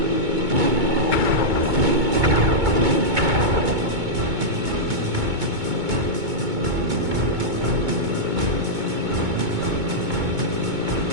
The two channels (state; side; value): late; left; 2.2 ms